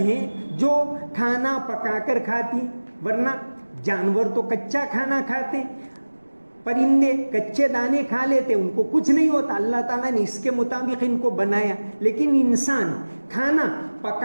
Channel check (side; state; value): both; inverted; correlation -1.00